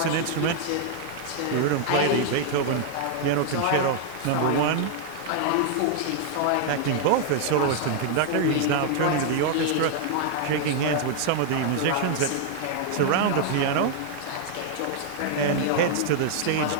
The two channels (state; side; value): different; both; correlation -0.01